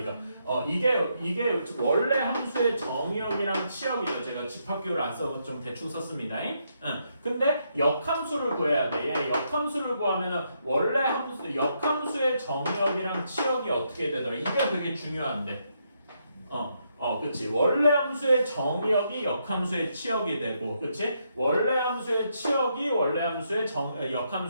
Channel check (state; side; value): inverted; both; correlation -0.78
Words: 이게 원래 함수의 정의역이랑 치역이죠. 제가 집합기호를 안 써서 좀 대충 썼습니다. 근데 역함수를 구해야 돼. 역함수를 구하면은 원래 역함수의 정의역이랑 치역이 어떻게 되더라? 이게 되게 중요한데. 그치. 원래 함수의 정의역이 역함수의 치역이 되고, 그치? 원래 함수의 치역이 원래 함수의